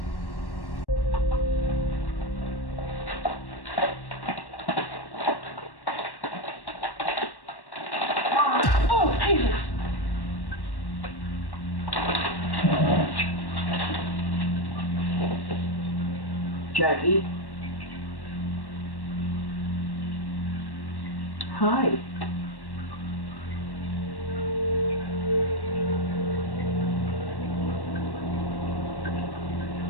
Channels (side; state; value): right; late; 1.1 ms